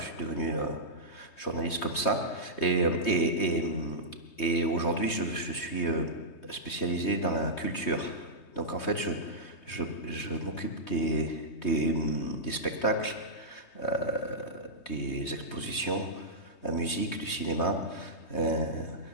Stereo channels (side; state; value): right; late; 3.2 ms